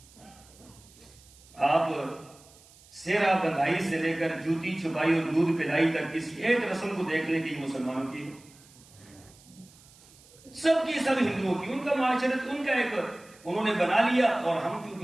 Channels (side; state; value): right; noise; hiss, 25 dB below the sound